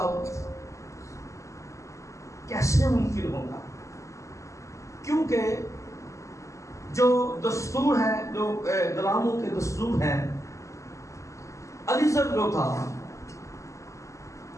کیسے ممکن ہوگا، کیونکہ جو دستور ہے، جو غلاموں کے دستور ہیں، علیزر جو تھا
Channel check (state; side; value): late; right; 0.15 ms